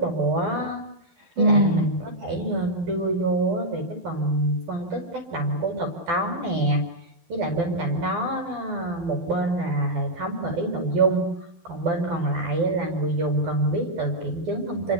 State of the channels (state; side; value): late; left; 12 ms